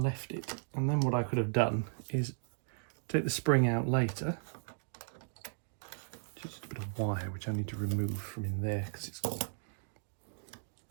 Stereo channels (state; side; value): silent; left; digital silence